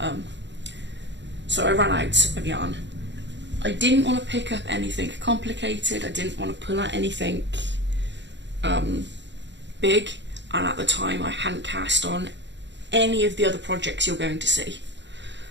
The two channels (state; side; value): late; left; 0.52 ms